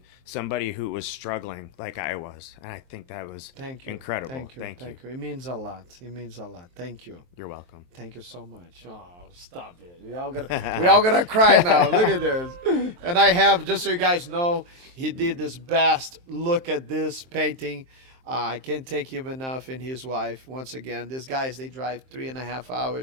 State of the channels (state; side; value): late; left; 23 ms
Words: somebody who was struggling like I was. And I think that was incredible. Thank you. It means a lot. Thank you. You're welcome. Thank you so much. Oh, stop it. We all gonna cry now. Look at this. And I have, just so you guys know, he did his best. Look at this painting. I can't take him enough, and his wife. Once again, these guys, they drive 3.5